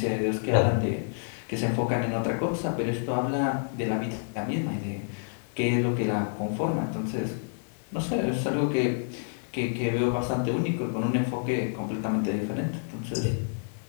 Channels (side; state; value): right; silent; 59 dB below the other